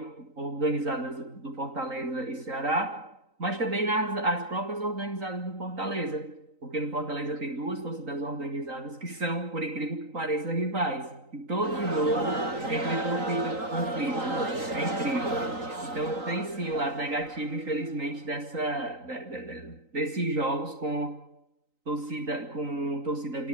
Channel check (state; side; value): late; left; 3.9 ms